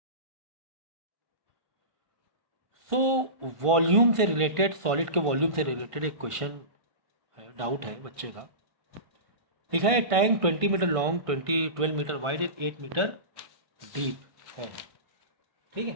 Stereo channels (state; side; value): late; left; 1.5 ms